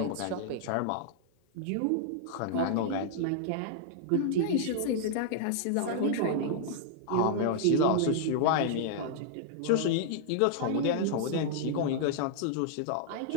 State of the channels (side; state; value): both; different; correlation -0.01